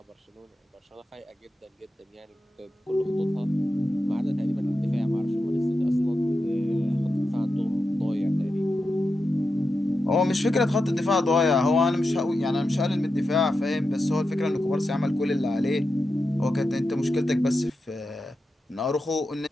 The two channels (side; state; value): both; normal; correlation 0.89